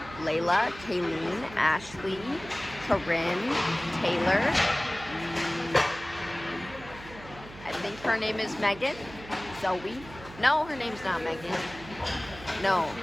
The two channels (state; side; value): noise; right; hum, 17 dB below the sound